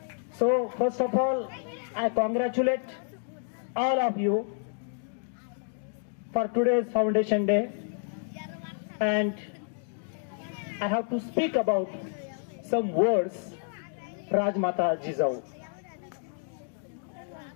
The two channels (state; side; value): silent; right; 58 dB below the other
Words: So first of all, I congratulate all of you for today's Foundation Day, and I have to speak about some words, Rajmata Jizau.